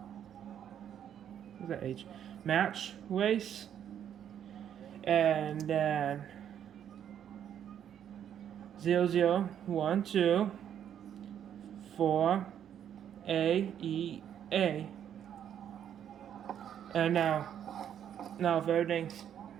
What's that H? Match race. And then 0012 4 AEA. And now if everything's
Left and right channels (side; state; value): left; quieter; 9.5 dB